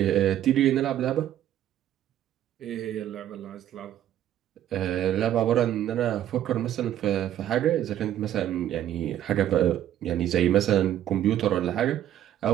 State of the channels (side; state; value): left; quieter; 11.7 dB